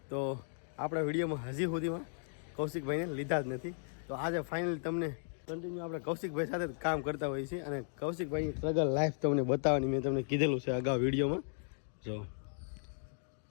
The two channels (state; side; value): silent; right; digital silence